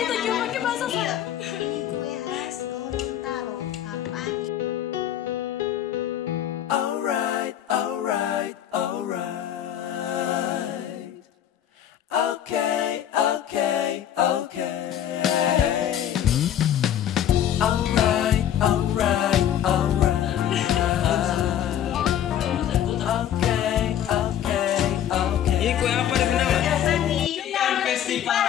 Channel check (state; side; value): quieter; right; 10.5 dB